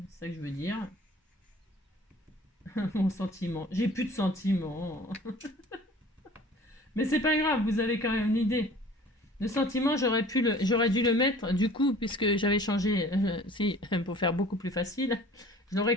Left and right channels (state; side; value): normal; both; correlation 0.48